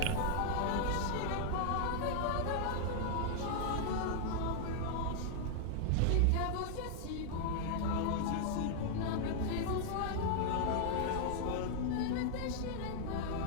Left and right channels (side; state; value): both; different; correlation -0.01